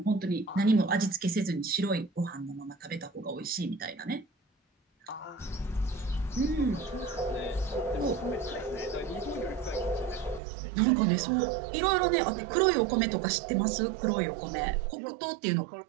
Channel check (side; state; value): left; drops out; at 10.4 s